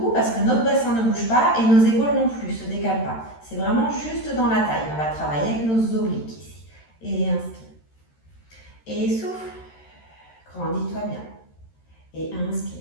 parce que notre bassin ne bouge pas et nos épaules non plus, ne se décalent pas. C'est vraiment juste dans la taille. On va travailler avec nos obliques ici. Et inspire. Et souffle. Grandis-toi bien. Et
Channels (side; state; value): right; late; 13 ms